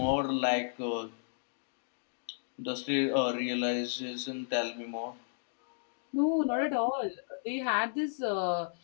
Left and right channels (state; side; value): silent; right; digital silence